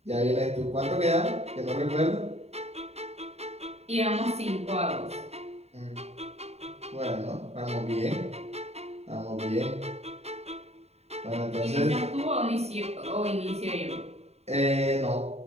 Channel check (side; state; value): left; late; 0.31 ms